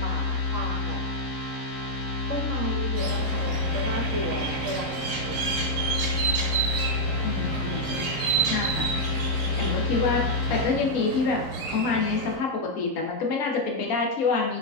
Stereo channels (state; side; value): late; right; 3.9 ms